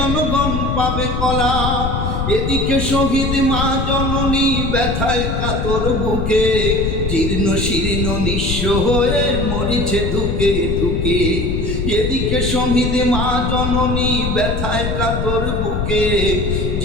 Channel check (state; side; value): noise; left; rumble, 1 dB below the sound